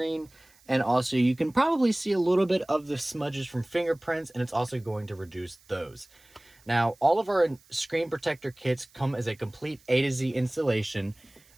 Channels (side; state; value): right; noise; hiss, 29 dB below the sound